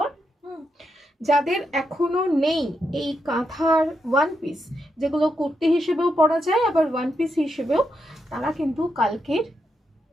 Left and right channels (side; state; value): both; normal; correlation 0.83